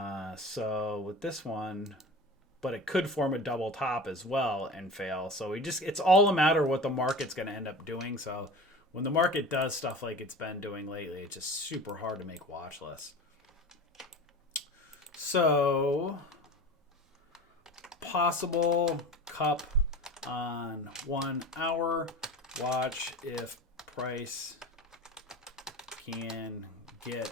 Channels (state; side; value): normal; both; correlation 0.35